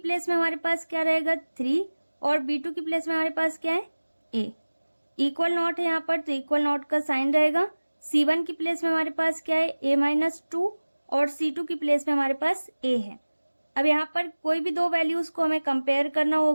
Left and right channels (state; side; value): inverted; both; correlation -1.00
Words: में हमारे पास क्या रहेगा, 3, और b2 की प्लेस में हमारे पास क्या है, a। इक्वल नॉट है यहाँ पर, तो इक्वल नॉट का साइन रहेगा। c1 की प्लेस में हमारे पास क्या है, a माइनस 2, और c2 की प्लेस में हमारे पास a है। अब यहाँ पर कोई भी दो वैल्यूज को हमें कंपेयर करना